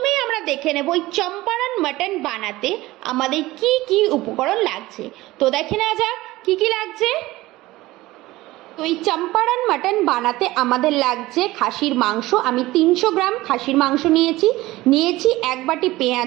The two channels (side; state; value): left; quieter; 18.3 dB